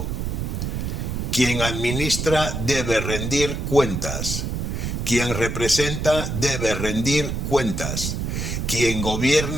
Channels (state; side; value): noise; right; rumble, 3 dB below the sound